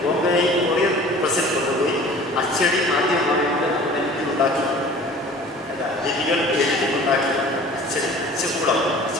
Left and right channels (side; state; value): both; normal; correlation 0.45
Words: പ്രസിൽ കൊണ്ടുപോയി അച്ചടി ആദ്യമായിട്ട് ഉണ്ടാക്കി. ലിപികൾ എഴുതിയുണ്ടാക്കി അച്ചകൂടം